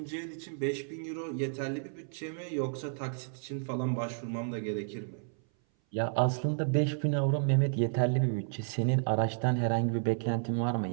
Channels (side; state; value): left; silent; 57 dB below the other